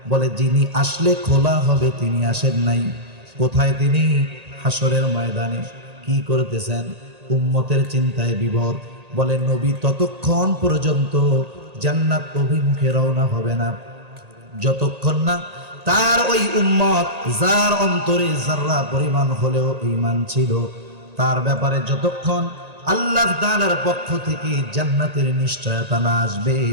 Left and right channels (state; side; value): late; left; 1.8 ms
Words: বলে যিনি আসলে খোলা হবে তিনি আসেন নাই। কোথায় তিনি? হাসরের ময়দানে। কি করতেছেন? উম্মতের চিন্তায় বিভোর। বলে নবী ততক্ষণ পর্যন্ত জান্নাত অভিমুখে রওনা হবে না, যতক্ষণ না তার ওই উম্মত, যার অন্তরে যাররা পরিমাণ হলেও ঈমান ছিল, তার ব্যাপারে যতক্ষণ আল্লাহ তাআলার পক্ষ থেকে জান্নাতের নিশ্চয়তা না আসবে,